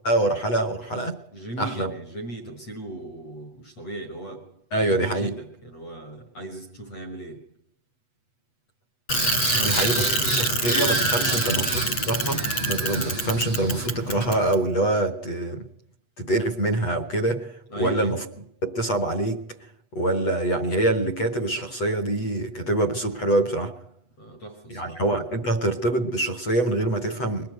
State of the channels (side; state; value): right; late; 8.2 ms